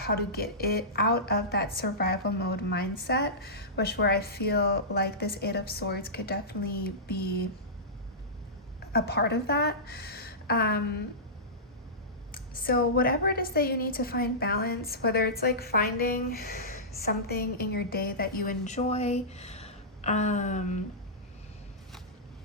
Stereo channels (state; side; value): normal; both; correlation -0.17